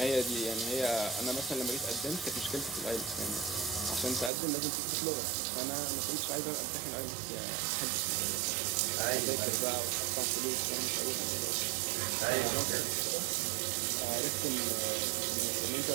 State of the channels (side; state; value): left; drops out; at 4.3 s